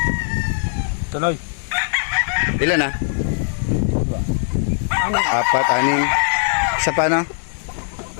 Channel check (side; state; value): right; silent; 66 dB below the other